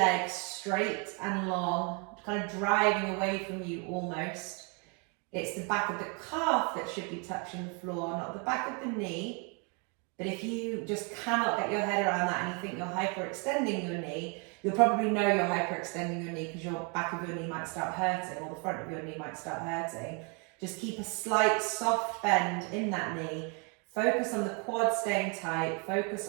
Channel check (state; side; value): quieter; left; 34.6 dB